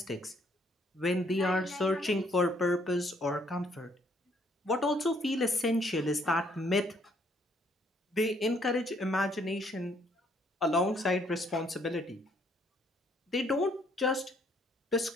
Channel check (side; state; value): both; normal; correlation 0.67